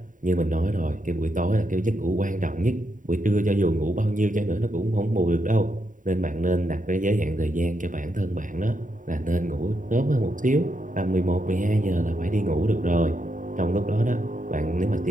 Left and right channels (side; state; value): left; late; 0.38 ms